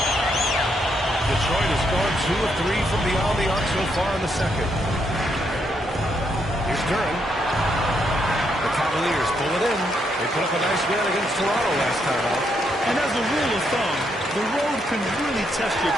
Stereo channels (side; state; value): both; normal; correlation 0.77